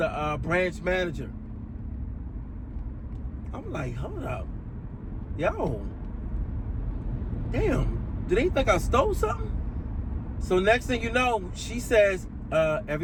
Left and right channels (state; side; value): identical; both; correlation 1.00